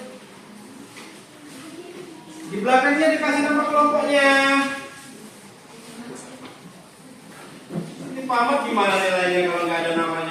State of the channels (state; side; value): identical; both; correlation 1.00